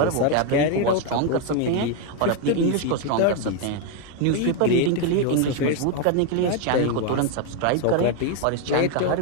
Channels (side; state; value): both; different; correlation 0.01